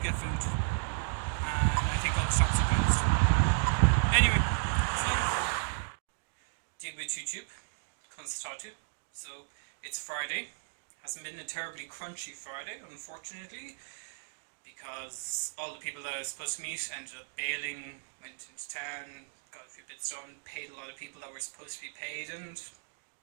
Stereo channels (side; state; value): left; silent; digital silence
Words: get food, and I think all the shops are closed. Anyway, so on the floor. Deal with YouTube, constatatu. So it's Friday. Hasn't been a terribly crunchy Friday, unfortunately, because all the people that I was supposed to meet ended up bailing, went into town, got a few bits done, paid a lot of people that were supposed to be paid, and